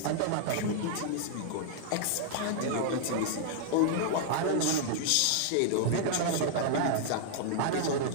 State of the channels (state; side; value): different; both; correlation -0.01